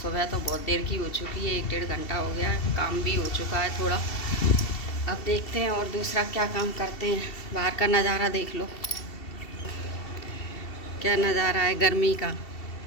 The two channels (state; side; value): late; right; 2.7 ms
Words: सुबह तो बहुत देर की हो चुकी है, 1-1.5 घंटा हो गया है, काम भी हो चुका है थोड़ा। अब देखते हैं और दूसरा क्या काम करते हैं। बाहर का नज़ारा देख लो, क्या नज़ारा है गर्मी का।